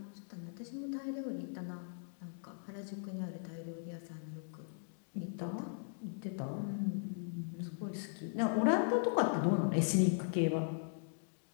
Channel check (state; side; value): silent; right; digital silence